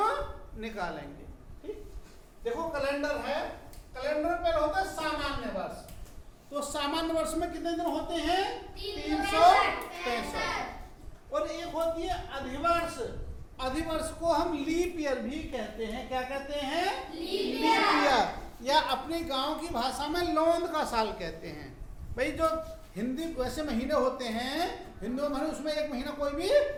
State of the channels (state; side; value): identical; both; correlation 1.00